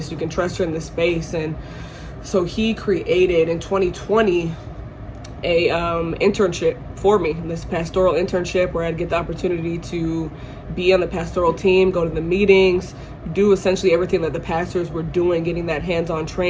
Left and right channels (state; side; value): identical; both; correlation 1.00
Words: you can trust her in this space. And so he created in 2020 a internship for me, this pastoral internship, where I'd get the opportunity to be on the pastoral team, go to the meetings, do essentially everything that the pastors were doing, getting that hands-on